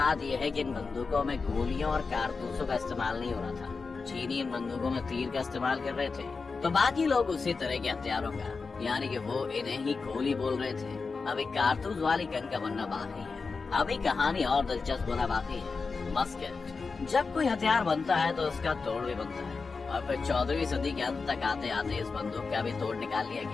यह है कि इन बंदूकों में गोलियों और कारतूसों का इस्तेमाल नहीं हो रहा था। चीनी इन बंदूकों में तीर का इस्तेमाल कर रहे थे, तो बाकी लोग उसी तरह के हथियारों का, यानी कि वो इन्हें ही गोली बोल रहे थे। अभी कारतूस वाली गन का बनना बाकी है। अभी कहानी और दिलचस्प होना बाकी है। मस्केट। जब कोई हथियार बनता है तो उसका तोड़ भी बनता है और फिर 14वीं सदी के अंत तक आते आते इस बंदूक का भी तोड़ निकाल लिया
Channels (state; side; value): quieter; right; 4.5 dB